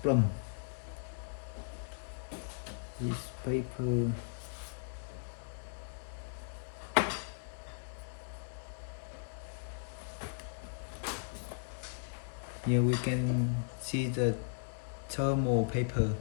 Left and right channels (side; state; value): right; silent; digital silence